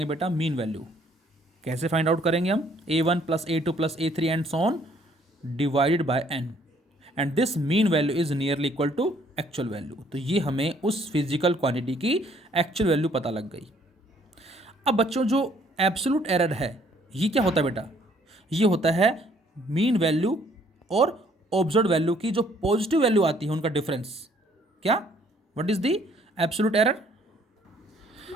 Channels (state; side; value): normal; both; correlation 0.63